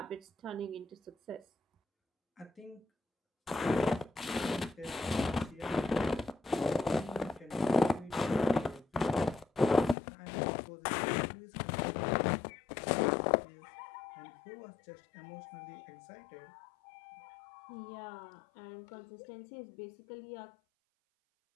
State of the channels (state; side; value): drops out; right; at 10.0 s